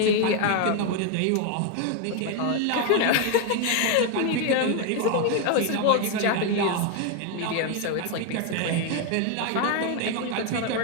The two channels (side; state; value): both; different; correlation 0.01